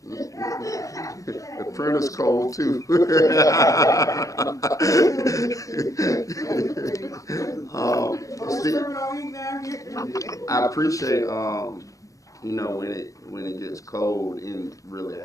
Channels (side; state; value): right; late; 0.16 ms